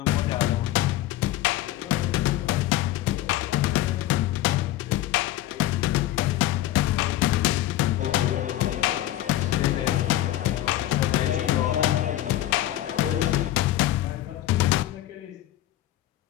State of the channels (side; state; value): right; quieter; 14.2 dB